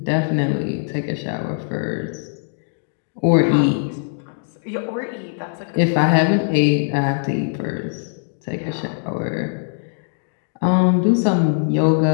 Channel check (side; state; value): right; silent; digital silence